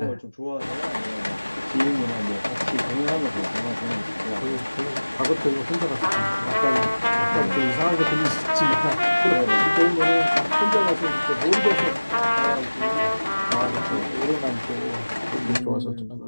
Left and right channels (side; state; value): both; inverted; correlation -1.00